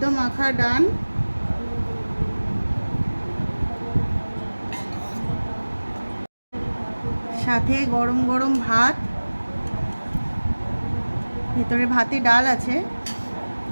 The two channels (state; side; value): inverted; both; correlation -1.00